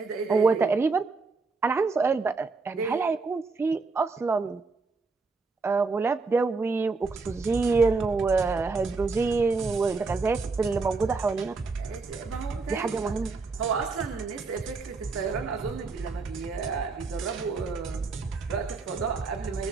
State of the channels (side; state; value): left; quieter; 4.1 dB